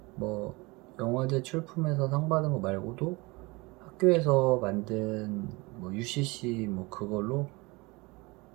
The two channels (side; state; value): left; quieter; 24.8 dB